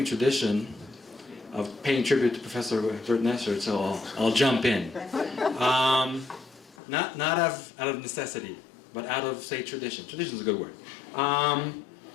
tradition of paying tribute to Professor Bert Nesser, so I'll jump in. Not out of necessity, but out of, say, tradition. Tradition is a good word.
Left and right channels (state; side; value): drops out; right; at 6.8 s